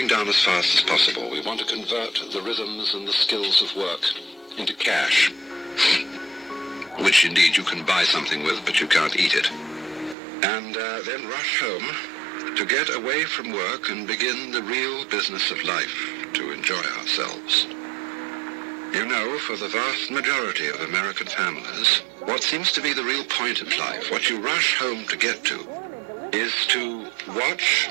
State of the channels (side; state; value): left; drops out; at 10.2 s